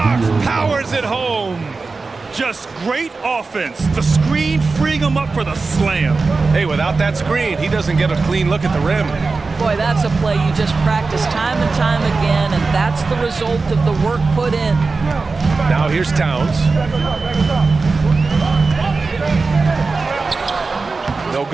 powers it home. Just great offense. The screen freeing him up for the slam. Hey, without that screen, he doesn't get a clean look at the rim. Boy, that's a play you just practice time and time again, and that's the result of the work put in. Now here's Towns. No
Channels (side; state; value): left; quieter; 4.1 dB